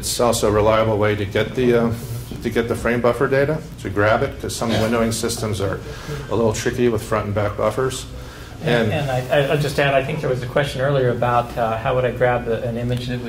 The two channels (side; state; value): both; identical; correlation 1.00